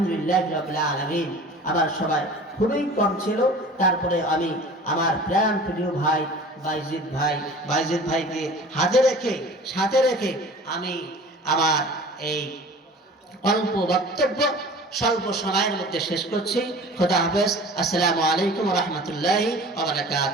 রাব্বিল আলামিন। আমার সবাই খুবই কম ছিল, তারপরে আমি আমার প্রাণ প্রিয় ভাই বাইজিদ ভাইকে সাথে রেখে আমি আমার এই অল্প বক্তব্য স্বল্প সময়ের মধ্যে শেষ করছি। খোদা হাফেজ। আসসালামু আলাইকুম ওয়া রাহমাতুল্লাহি ওয়া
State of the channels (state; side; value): normal; both; correlation 0.42